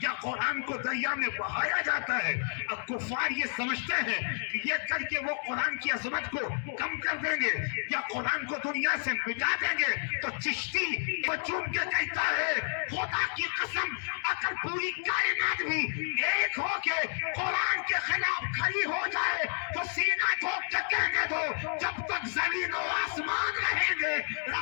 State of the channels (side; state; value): right; silent; 57 dB below the other